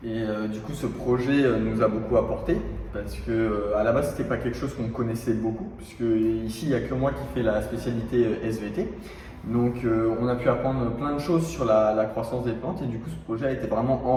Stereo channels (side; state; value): both; identical; correlation 1.00